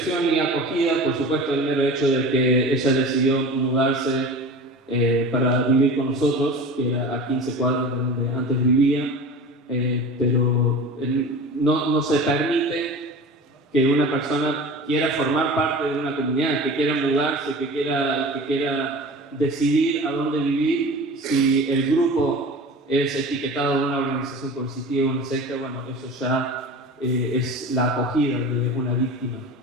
y acogida, por supuesto, el mero hecho de que ella decidió mudarse para vivir con nosotros, que era a 15 cuadras de donde antes vivía, pero no se permite que una persona quiera formar parte de una comunidad, que quiera mudarse, que quiera decidir a dónde vivir, si el grupo es etiquetado de una organización coercitiva o una secta. Bueno, eso ya es la acogida de una víctima.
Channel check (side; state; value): both; normal; correlation 0.35